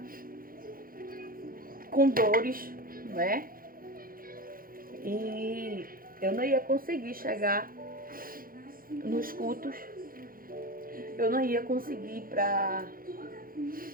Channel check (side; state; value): left; late; 0.42 ms